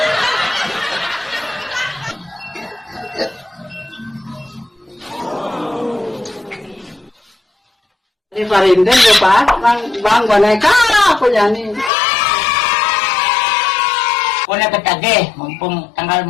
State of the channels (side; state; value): right; drops out; at 11.9 s